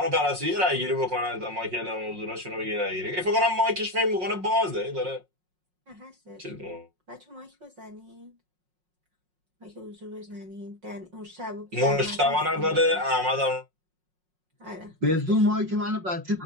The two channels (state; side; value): late; left; 5.5 ms